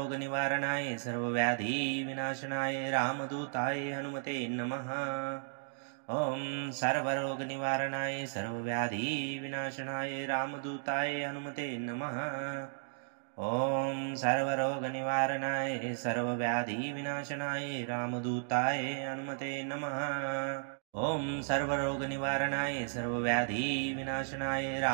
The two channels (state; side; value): silent; left; digital silence